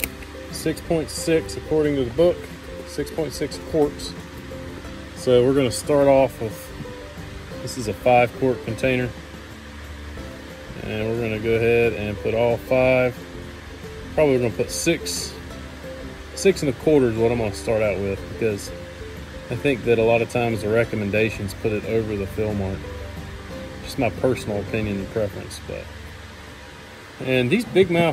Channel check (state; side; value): identical; both; correlation 1.00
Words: 6.6 according to the book, 6.6 quarts. So we're going to start off with, this is a 5-quart container, and we're going to go ahead and put all 5. Probably going to put 6 1/4 is what I'm going to start out with, because I think that a lot of times the recommendations put it over the fill mark. Just my personal opinion and preference. And these big